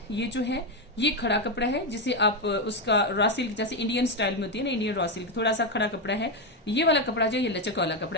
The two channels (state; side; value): normal; both; correlation 0.07